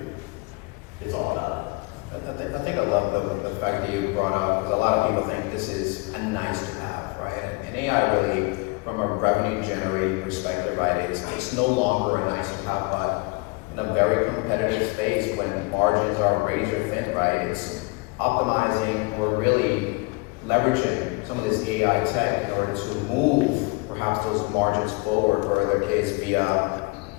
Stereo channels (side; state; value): right; quieter; 27.6 dB